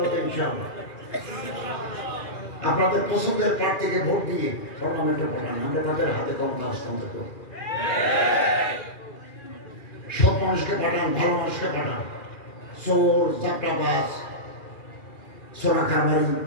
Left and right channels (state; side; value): late; right; 2.4 ms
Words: ইনশাআল্লাহ আপনাদের পছন্দের প্রার্থীকে ভোট দিয়ে পার্লামেন্টে পাঠান, আমরা তাদের হাতে ক্ষমতা হস্তান্তর করব। সব মানুষকে পাঠান, ভালো মানুষকে পাঠান, চোর চাপটাবাজ সোনা কারবারি